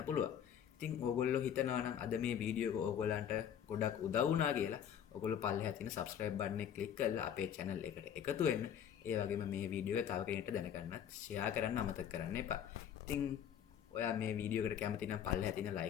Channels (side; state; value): right; quieter; 9.1 dB